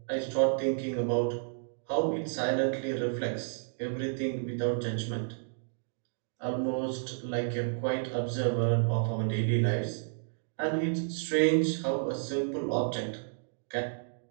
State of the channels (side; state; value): left; silent; digital silence